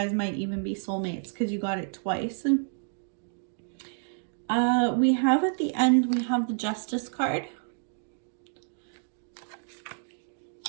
might even be soulmates because you got it twice. We have at the end, we have the Justice card.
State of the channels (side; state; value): left; silent; digital silence